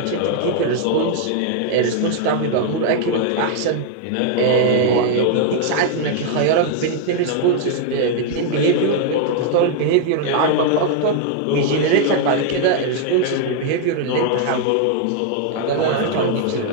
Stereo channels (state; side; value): different; both; correlation 0.00